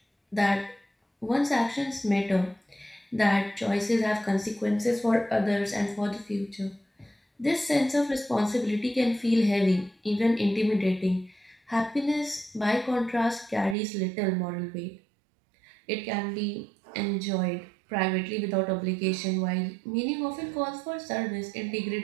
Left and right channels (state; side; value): drops out; left; at 13.8 s